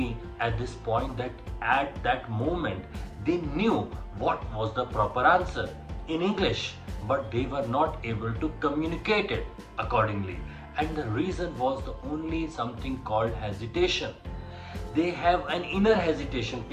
at this point that at that moment they knew what was the proper answer in English, but they were not able to communicate it accordingly, and the reason was the only something called hesitation. They have an inner hesitation.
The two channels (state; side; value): identical; both; correlation 1.00